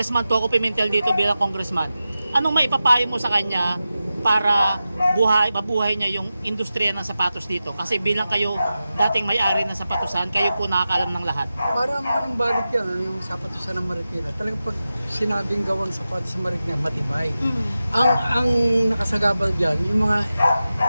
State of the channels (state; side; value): inverted; both; correlation -0.93